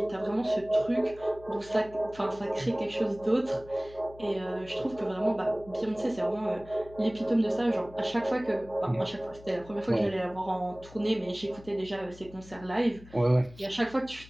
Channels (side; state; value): left; noise; hum, 20 dB below the sound